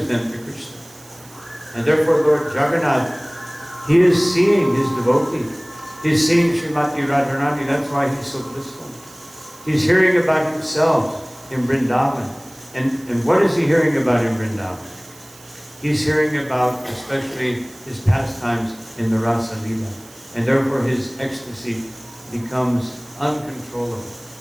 them to Krishna. And therefore Lord Jagannath, he is seeing his devotee. He's seeing Srimati Radharani. That's why he's so blissful. He's hearing about himself in Vrindavan. And what is he hearing about in Vrindavan? He's hearing about especially his pastimes in the Rasa Leela. And therefore his ecstasy becomes uncontrollable.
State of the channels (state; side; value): noise; right; hiss, 23 dB below the sound